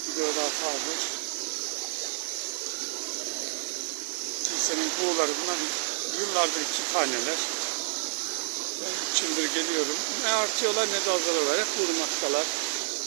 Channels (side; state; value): left; silent; 59 dB below the other